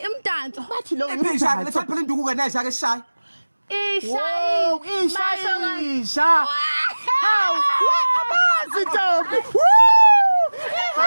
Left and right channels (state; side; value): inverted; both; correlation -1.00